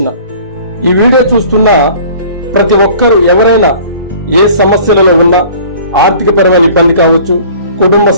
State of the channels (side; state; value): both; inverted; correlation -0.48